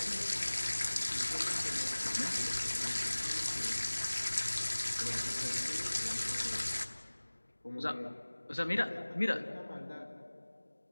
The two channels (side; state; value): both; inverted; correlation -1.00